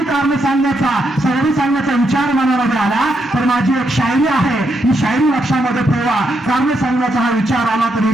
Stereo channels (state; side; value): normal; both; correlation 0.80